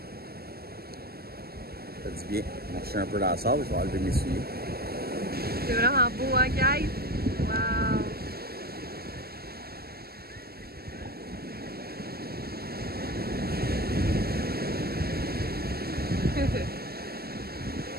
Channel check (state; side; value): late; left; 0.45 ms